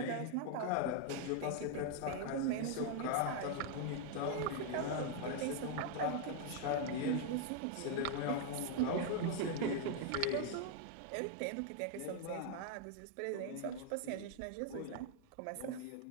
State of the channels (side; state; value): both; different; correlation 0.00